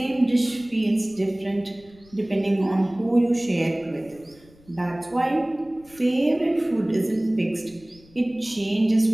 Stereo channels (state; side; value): noise; left; rumble, 26 dB below the sound